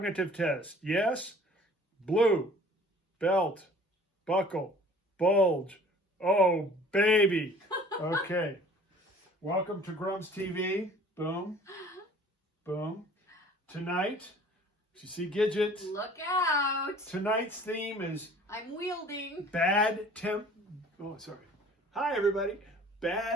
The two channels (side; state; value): both; normal; correlation 0.50